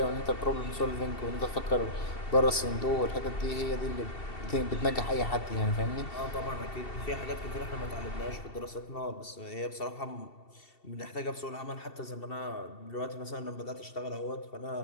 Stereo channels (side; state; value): right; late; 2.7 ms